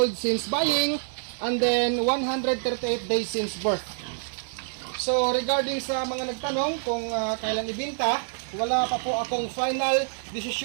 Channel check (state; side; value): silent; left; 60 dB below the other